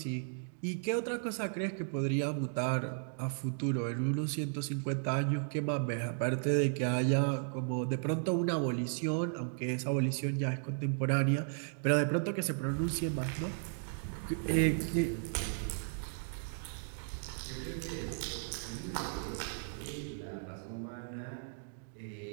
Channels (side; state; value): left; silent; digital silence